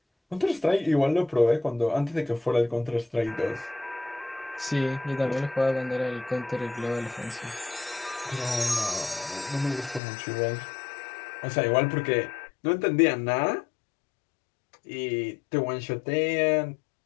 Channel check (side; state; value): right; drops out; at 10.0 s